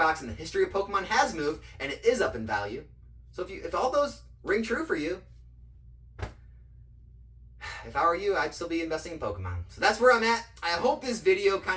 in the history of Pokemon has moved, and it is up in value. So if all those ring true for you, if I were you, I'd still be investing in Pokemon. So that's where I'm at. I hope this video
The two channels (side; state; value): both; identical; correlation 1.00